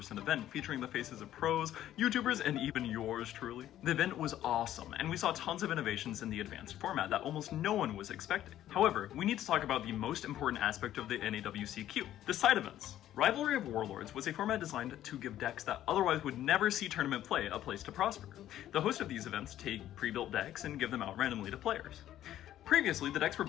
event featuring the faces of pros, YouTubers, and even yours truly. The event was awesome, and we saw tons of innovations in the advanced format that almost no one was expecting. However, we need to talk about the most important aspect of the NAWCQ, the side events. Rivalry of Warlords was a format designed to give decks that otherwise would never see tournament play a place to prosper. The host of these events take pre-built decks and give them out randomly to players. Previously, the decks were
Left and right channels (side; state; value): right; quieter; 12.4 dB